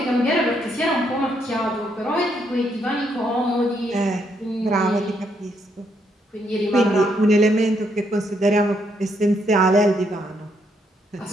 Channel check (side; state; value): both; normal; correlation 0.75